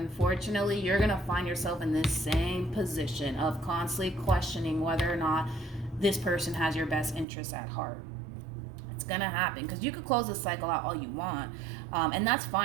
you're going to find yourself in this same position of constantly questioning whether or not this person has your best interests at heart. It's going to happen, because you could close this cycle out all you want, and that's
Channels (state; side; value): drops out; left; at 7.2 s